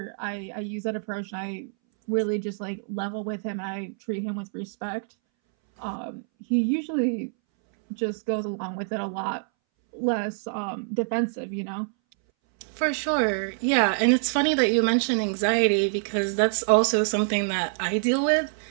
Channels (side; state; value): left; silent; 61 dB below the other